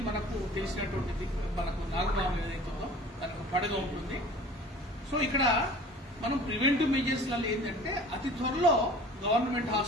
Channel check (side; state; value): both; normal; correlation 0.44